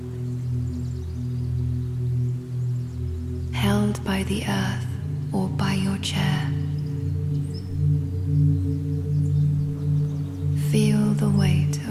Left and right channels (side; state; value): both; identical; correlation 1.00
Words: held by the earth or by your chair. Feel the weight